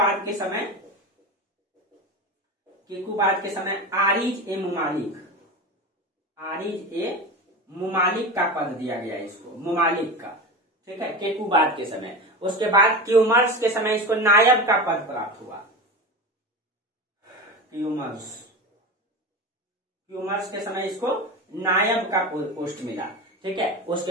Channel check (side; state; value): both; normal; correlation 0.25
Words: के समय आरिज ए मुमालिक का पद दिया गया इसको, मुमालिक का, ठीक है, केकूबाद के समय। उसके बाद क्यूमर्स के समय इसको नायब का पद प्राप्त हुआ। क्यूमर्स के समय इसको नायब का पोस्ट मिला, ठीक है।